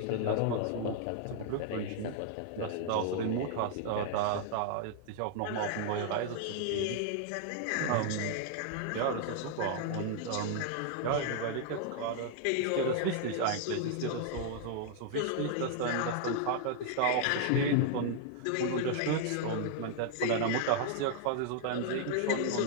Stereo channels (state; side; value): different; both; correlation -0.01